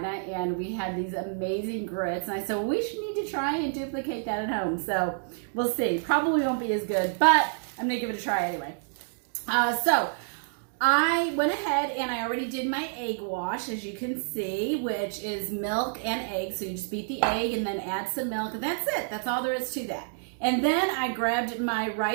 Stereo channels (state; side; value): silent; left; digital silence